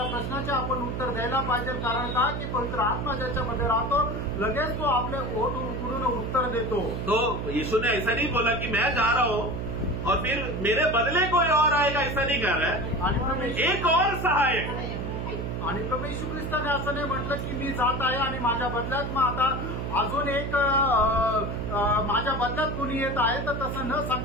प्रश्नाचे आपण उत्तर द्यायला पाहिजे, कारण का की पवित्र आत्मा ज्याच्यामध्ये राहतो लगेच तो आपले ओठ उघडून उत्तर देतो। तो यीशु ने ऐसा नहीं बोला कि मैं जा रहा हूँ और फिर मेरे बदले कोई और आएगा, ऐसा नहीं कह रहा है। एक और सहायक आणि प्रभू येशू ख्रिस्ताने असं नाही म्हटलं की मी जात आहे आणि माझ्या बदल्यात मग आता अजून एक माझ्या बदल्यात कोणी येत आहे, तर तसं न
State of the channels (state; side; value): noise; right; hum, 4 dB below the sound